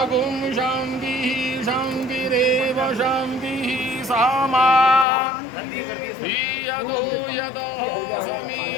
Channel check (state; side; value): drops out; right; at 5.1 s